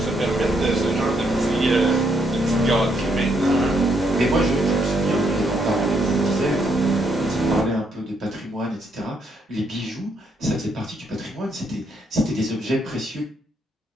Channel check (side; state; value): both; normal; correlation 0.74